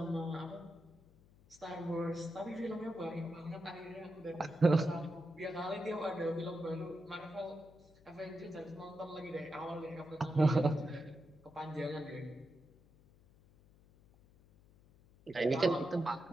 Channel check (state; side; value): noise; left; hum, 26 dB below the sound